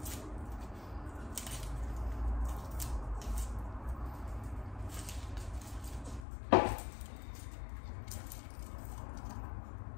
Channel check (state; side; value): drops out; right; at 6.2 s